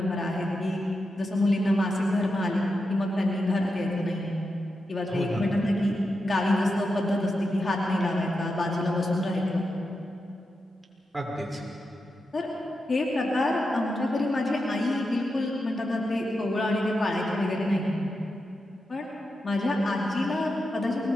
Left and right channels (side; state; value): both; normal; correlation 0.88